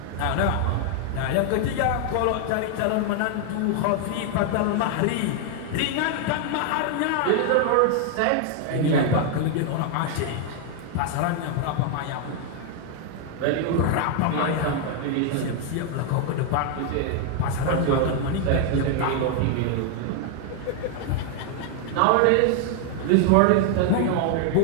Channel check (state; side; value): different; both; correlation 0.00